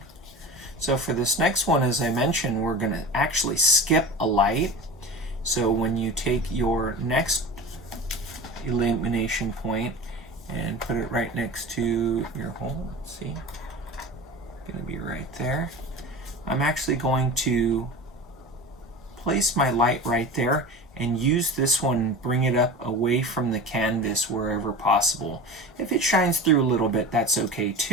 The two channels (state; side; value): normal; both; correlation 0.32